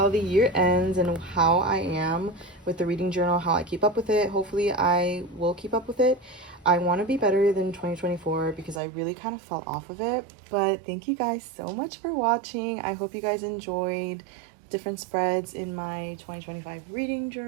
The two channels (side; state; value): left; drops out; at 8.8 s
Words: the year ends and how I am with the reading journal, how I keep up with it. Hopefully I will keep up with it. I want to be better than 2024 because I really kind of fell off of it. But thank you guys so much for watching. I hope you guys enjoyed different spreads in my 2025 reading